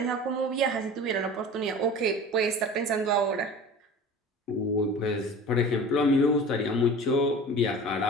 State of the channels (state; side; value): normal; both; correlation 0.38